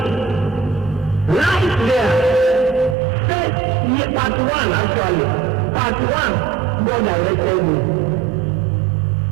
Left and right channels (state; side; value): drops out; left; at 3.0 s